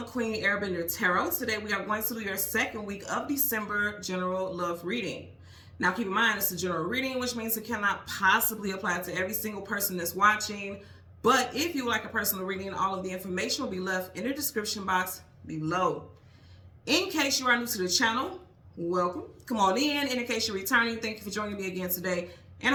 Queen Airbender Tarot. Today we are going to do your second week of December general love reading. Now keep in mind it's a general reading, which means it cannot possibly apply to every single person that's watching. But if you would like a personal reading, all of the information will be left in the description box below. In case you are new to the channel, welcome. Come on in. And in case you're returning, thank you for joining me again today. And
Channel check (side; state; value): both; identical; correlation 1.00